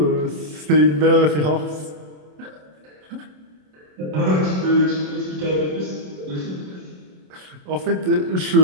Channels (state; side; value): late; left; 27 ms